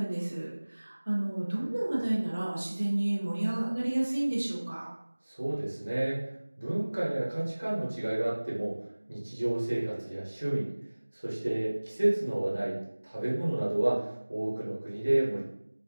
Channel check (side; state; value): both; inverted; correlation -1.00